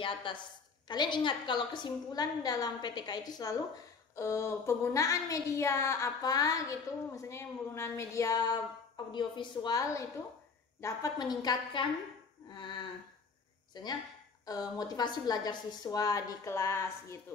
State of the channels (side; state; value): right; quieter; 5.0 dB